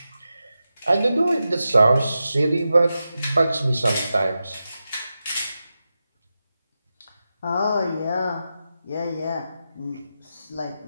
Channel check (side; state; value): both; inverted; correlation -0.91